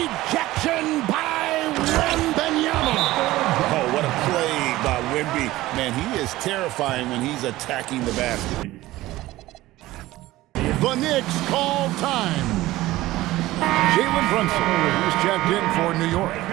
by Wembanyama. Oh, what a play by Wemby. Man, he is terrifying when he's attacking the basket. The Knicks call time. Jalen Brunson is checked in for New York.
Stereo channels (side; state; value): left; quieter; 17.2 dB